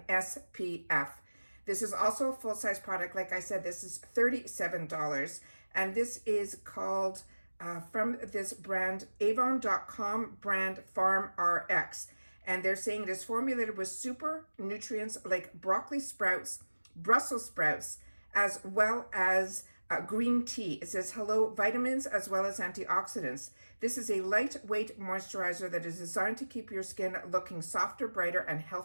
SPF. This is also a full-size product. Like I said, this is $37. And this is called, from this brand, Avon.com brand FarmRx. And they're saying it is formulated with super nutrients like broccoli sprouts, Brussels sprouts, as well as green tea. It says, hello, vitamins as well as antioxidants. This is a lightweight moisturizer that is designed to keep your skin looking softer, brighter, and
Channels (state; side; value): inverted; both; correlation -1.00